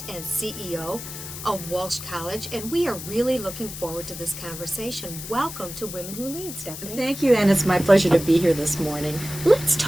and CEO of Walsh College, and we are really looking forward to this conversation. Welcome to Women Who Lead, Stephanie. Thank you, and it's my pleasure to be here this morning. Let's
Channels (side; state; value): left; noise; hiss, 10 dB below the sound